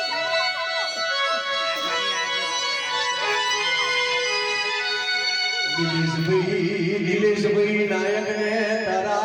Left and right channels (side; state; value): both; identical; correlation 1.00